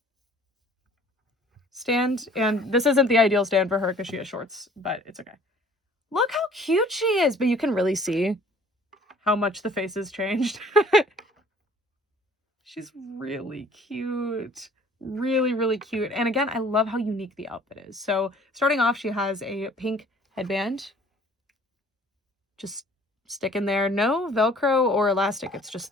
stand. And this isn't the ideal stand for her because she has shorts, but it's okay. Look how cute she is, but you can really see how much the face has changed. She's really cute. Really, really cute. And again, I love how unique the outfit is. So starting off, she has a pink headband. Just stick in there. No Velcro or elastic. It's just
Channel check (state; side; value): normal; both; correlation 0.53